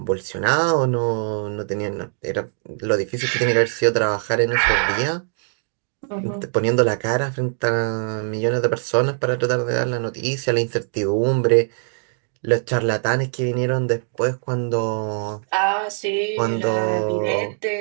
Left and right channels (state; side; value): silent; left; digital silence